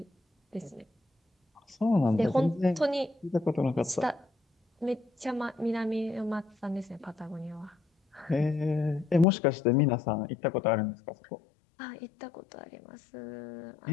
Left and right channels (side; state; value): right; drops out; at 9.2 s